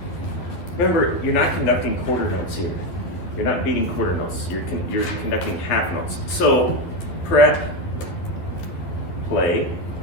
Remember, you're not conducting quarter notes here. You're not beating quarter notes. You're conducting half notes. So, prep, play,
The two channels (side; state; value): right; late; 11 ms